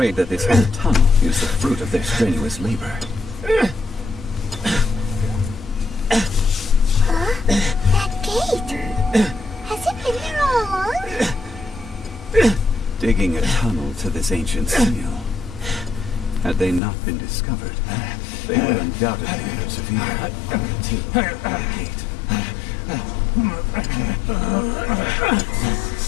that this whole tunnel is the fruit of their strenuous labor. That gate. Has it been there all along? Digging a tunnel to this ancient seal. Had they not been discovered, they would undoubtedly persevere until the gate.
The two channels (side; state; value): right; drops out; at 16.8 s